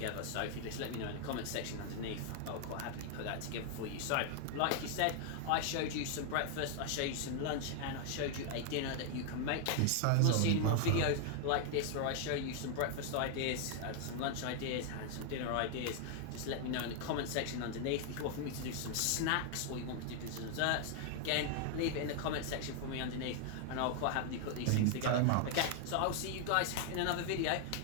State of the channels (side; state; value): both; different; correlation 0.00